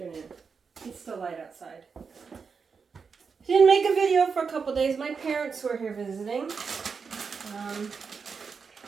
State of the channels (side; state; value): left; quieter; 5.5 dB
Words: It's still light outside. Didn't make a video for a couple days. My parents were here visiting.